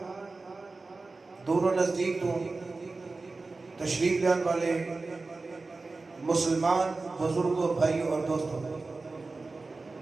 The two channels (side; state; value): left; quieter; 3.6 dB